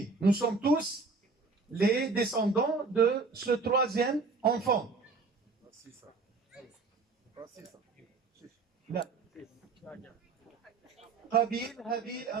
Nous sommes tous les descendants de ce 3e enfant. Là. Habil,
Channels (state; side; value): quieter; left; 4.2 dB